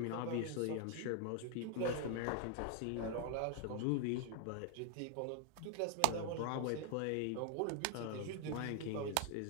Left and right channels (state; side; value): different; both; correlation 0.00